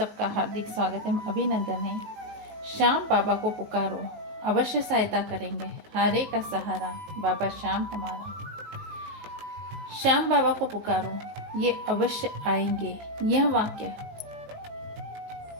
हार्दिक स्वागत है, अभिनंदन है। श्याम बाबा को पुकारो, अवश्य सहायता करेंगे, हारे का सहारा बाबा श्याम हमारा। श्याम बाबा को पुकारो, ये अवश्य आएंगे। यह वाक्य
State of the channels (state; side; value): late; left; 19 ms